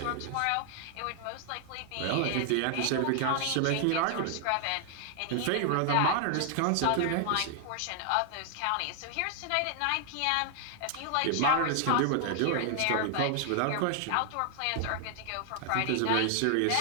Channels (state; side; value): different; both; correlation 0.00